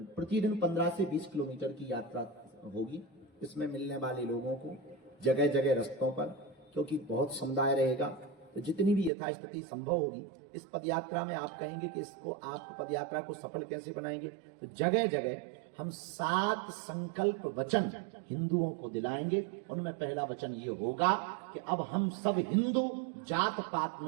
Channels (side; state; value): left; drops out; at 9.1 s